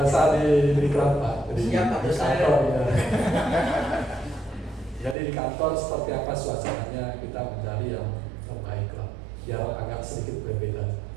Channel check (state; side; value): drops out; left; at 5.2 s